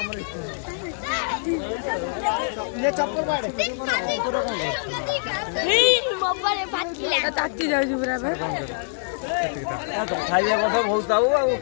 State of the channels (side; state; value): right; silent; digital silence